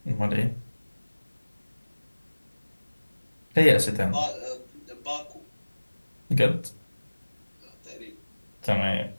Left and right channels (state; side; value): inverted; both; correlation -1.00